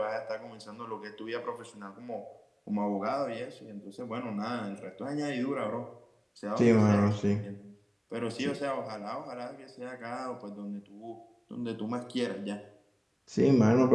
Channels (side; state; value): both; identical; correlation 1.00